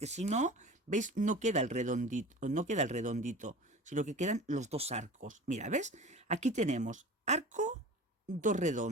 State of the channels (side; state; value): both; normal; correlation 0.37